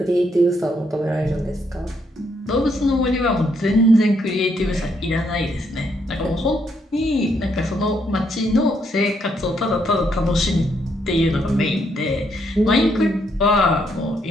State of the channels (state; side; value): normal; both; correlation 0.74